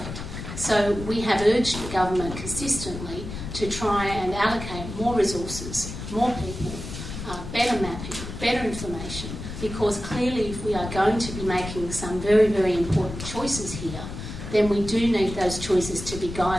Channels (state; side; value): noise; left; rumble, 9 dB below the sound